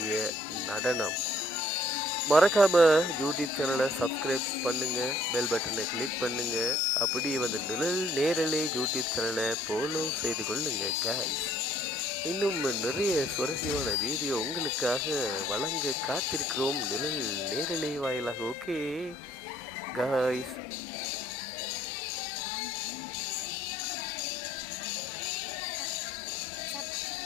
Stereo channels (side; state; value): both; normal; correlation 0.61